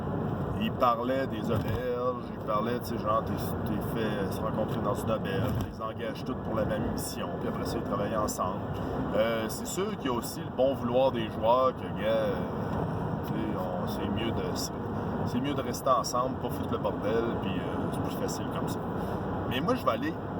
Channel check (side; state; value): both; identical; correlation 1.00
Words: Il parlait des auberges, il parlait, tu sais, genre, t'es fait se rencontrer dans une auberge, tu les engages toutes pour la même mission, puis après ça, ils travaillent ensemble. C'est sûr qu'il y a aussi le bon vouloir des joueurs que, tu sais, c'est mieux de rester ensemble, pas foutre le bordel, puis c'est plus facile comme ça. Mais moi, je vais aller